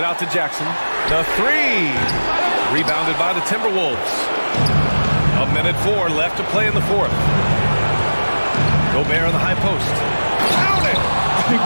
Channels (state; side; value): inverted; both; correlation -1.00